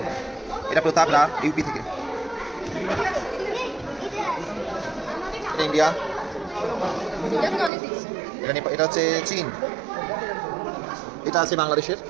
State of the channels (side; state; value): left; drops out; at 7.7 s